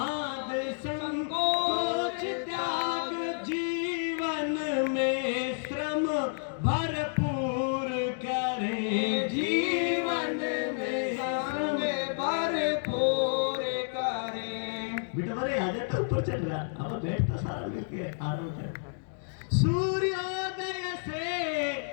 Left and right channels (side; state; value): right; silent; digital silence